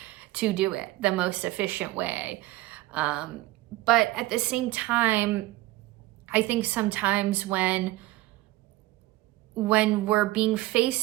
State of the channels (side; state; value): left; quieter; 17.8 dB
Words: to do it, the most efficient way. But at the same time, I think sometimes when we're being